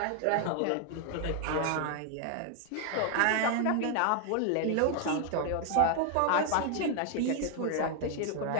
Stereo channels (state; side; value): different; both; correlation 0.00